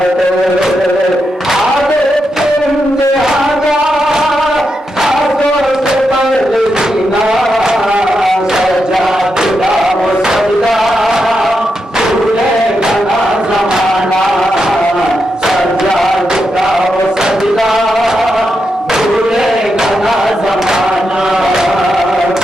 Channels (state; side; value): normal; both; correlation 0.85